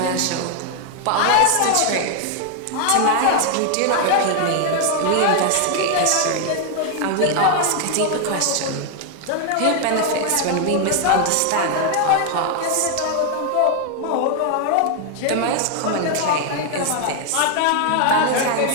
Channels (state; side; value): different; both; correlation 0.00